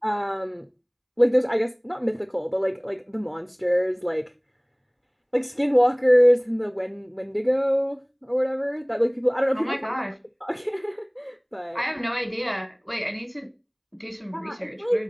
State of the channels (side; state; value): both; identical; correlation 1.00